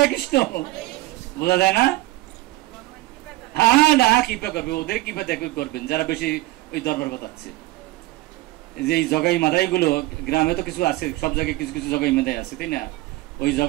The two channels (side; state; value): left; quieter; 18.7 dB